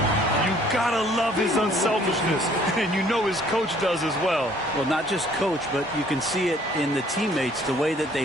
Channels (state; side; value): normal; both; correlation 0.59